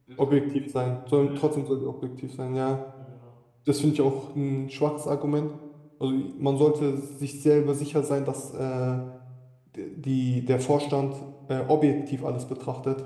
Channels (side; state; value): both; identical; correlation 1.00